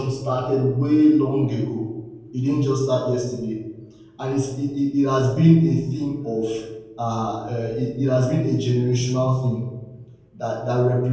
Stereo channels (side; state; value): both; identical; correlation 1.00